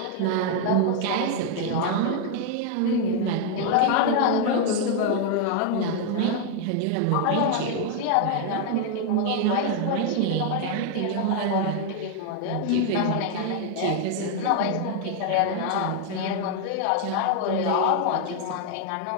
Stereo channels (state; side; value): different; both; correlation 0.00